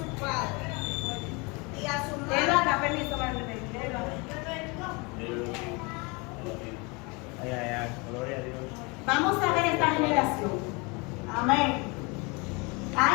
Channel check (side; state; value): right; quieter; 28.2 dB